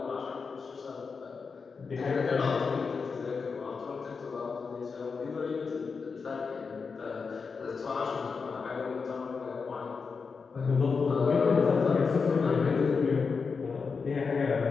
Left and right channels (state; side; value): quieter; right; 5.1 dB